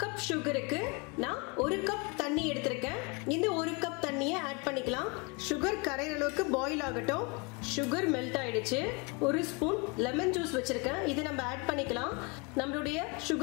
கப் சுகருக்கு நான் 1 கப் தண்ணி எடுத்திருக்கேன். இந்த 1 கப் தண்ணியை ஆட் பண்ணிக்கலாம். சுகர் கரையிற அளவுக்கு பாயில் ஆகட்டும். சுகர் மெல்ட் ஆயிடுச்சு. 1 ஸ்பூன் லெமன் ஜூஸ் வச்சிருக்கேன். இதை நம்ம ஆட் பண்ணிக்கலாம். நம்மளுடைய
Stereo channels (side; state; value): right; quieter; 29.5 dB